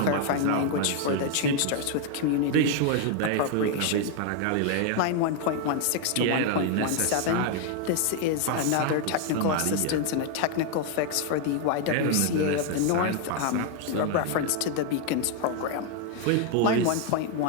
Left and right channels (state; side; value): different; both; correlation 0.00